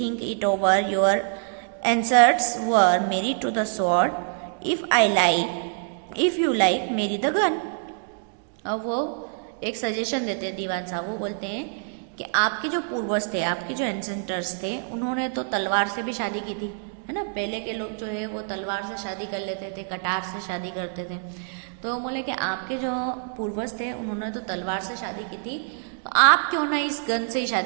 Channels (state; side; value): silent; left; 61 dB below the other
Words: it over, your answers were marry to the sword, if you like marry the gun. अब वो एक सजेशन देते हैं दीवान साहब, वो बोलते हैं कि आपके जो पूर्वज थे, आपके जो एंसेंटर्स थे, उन्होंने तो तलवार से भी शादी की थी, है ना। पहले के लोग जो है वो तलवार से शादी कर लेते थे, कटार से शादी करते थे। तो बोले कि आपके जो पूर्वज थे उन्होंने तो तलवार से शादी की थी, तो आप क्यों ना इस गन से ही